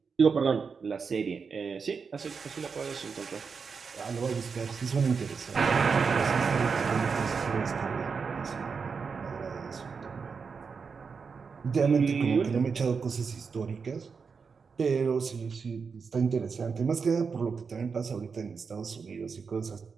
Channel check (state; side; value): quieter; left; 5.5 dB